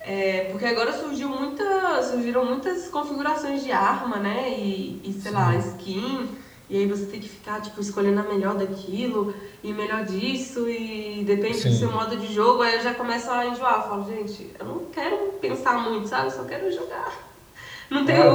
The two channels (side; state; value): both; identical; correlation 1.00